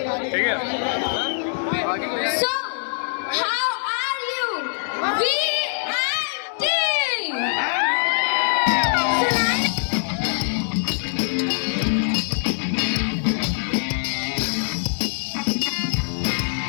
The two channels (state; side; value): silent; right; 60 dB below the other